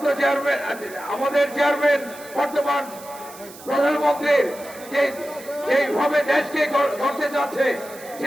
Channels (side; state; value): right; noise; hiss, 18 dB below the sound